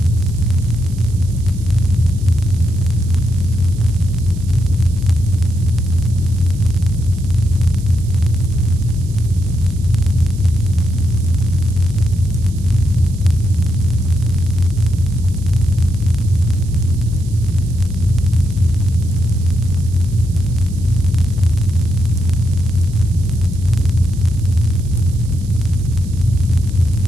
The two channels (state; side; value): noise; right; hiss, 22 dB below the sound